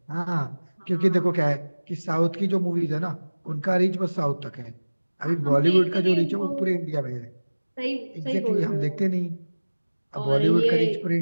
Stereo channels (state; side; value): inverted; both; correlation -1.00